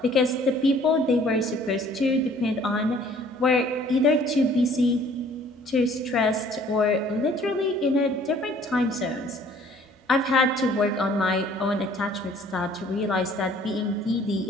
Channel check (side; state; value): both; normal; correlation 0.56